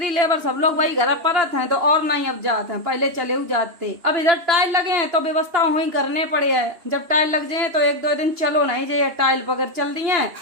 लेबर सब लोग वही घर परत हैं तो और नहीं अब जाते हैं, पहले चले जाते। अब इधर टाइल लगे हैं तो व्यवस्था वही करने पड़े है। जब टाइल लग जाए तो एक दो दिन चलो नहीं जाइए, टाइल पकड़ चल दी है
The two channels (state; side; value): late; left; 2.9 ms